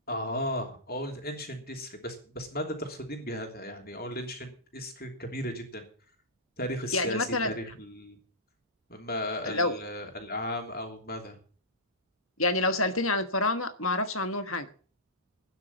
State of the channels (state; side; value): normal; both; correlation -0.18